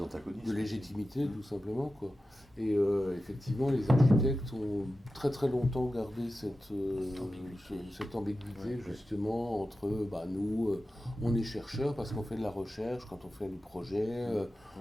antagonismes. De légitimité, tout simplement, quoi. Et effectivement, les architectes ont très très longtemps gardé cette ambiguïté justement entre nous, on est chercheurs parce qu'on fait de la recherche, quand on fait du projet,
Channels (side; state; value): both; normal; correlation 0.93